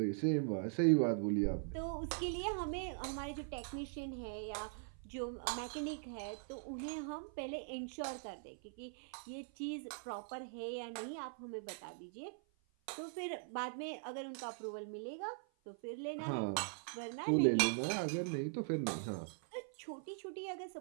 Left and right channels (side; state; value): left; silent; 50 dB below the other